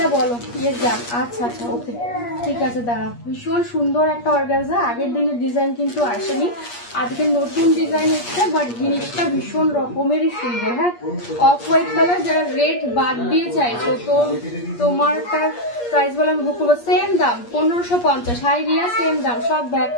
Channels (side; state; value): right; late; 8.5 ms